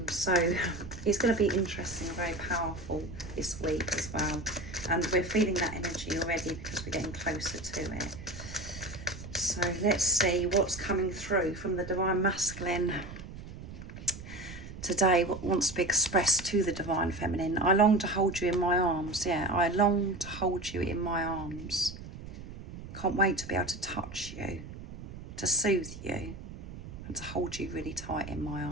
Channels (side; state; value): right; noise; rumble, 12 dB below the sound